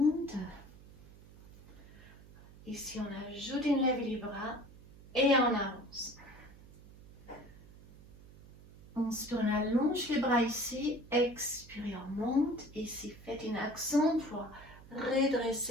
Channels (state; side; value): noise; right; hum, 20 dB below the sound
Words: Ici, on ajoute une lèvre les bras et on avance. Inspire, on allonge les bras ici, expirez, on monte. Ici, faites une action pour